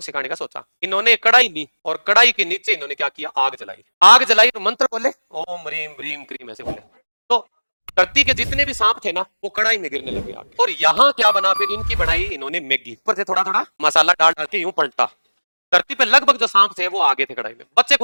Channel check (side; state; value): both; inverted; correlation -1.00